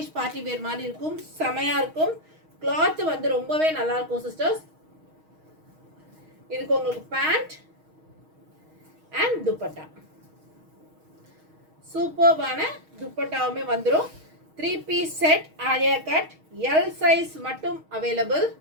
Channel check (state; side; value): late; left; 6.4 ms